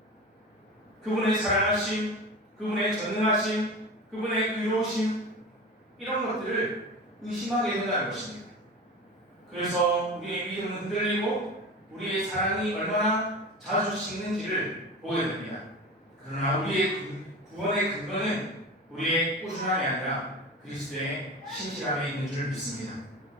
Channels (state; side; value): normal; both; correlation 0.31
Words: 그분의 사랑하심, 그분의 전능하심, 그분의 의로우심 이런 것들을 의심하게 된다는 것입니다. 그래서 우리의 믿음은 흔들리고 우리의 사랑이 얼마나 자주 식는지를 보게 됩니다. 그러나 우리의 구원의 근거는 우리의 꾸준함이 아니라 그리스도의 신실함에 있는 줄 믿습니다.